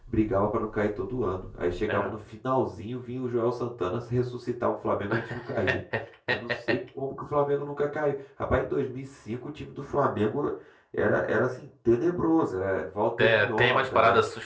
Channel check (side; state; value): both; identical; correlation 1.00